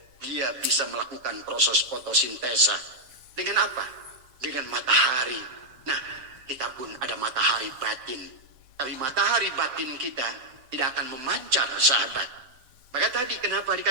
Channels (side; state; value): left; late; 7.0 ms